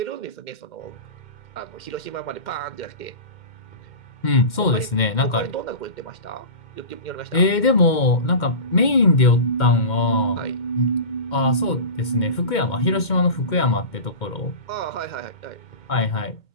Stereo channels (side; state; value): right; late; 2.1 ms